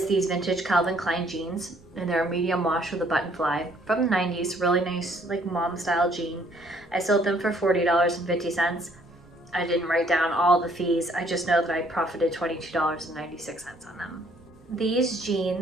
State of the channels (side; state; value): right; noise; rumble, 26 dB below the sound